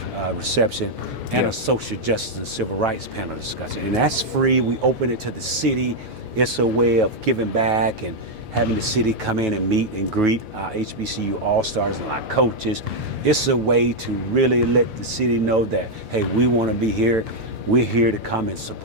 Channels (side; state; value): left; late; 6.9 ms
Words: reception, and a social justice and civil rights panel discussion. And that's free. We open it to the city. It's a way of giving back and having the city come in and meet and greet our HBCU All-Stars and our coaches. It's a way to really let the city know that, hey, we want to be here. We're here to come and